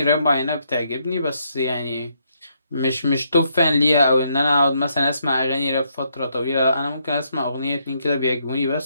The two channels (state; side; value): inverted; both; correlation -0.75